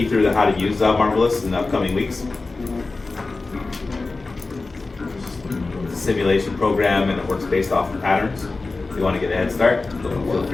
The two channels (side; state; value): right; quieter; 3.6 dB